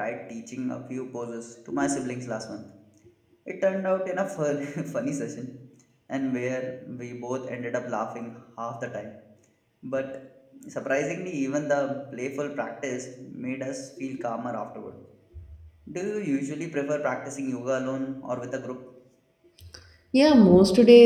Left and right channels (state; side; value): identical; both; correlation 1.00